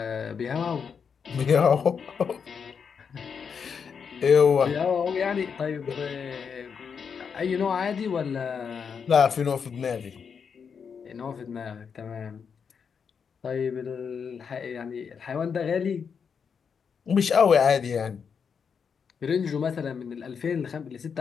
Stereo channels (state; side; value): quieter; right; 6.5 dB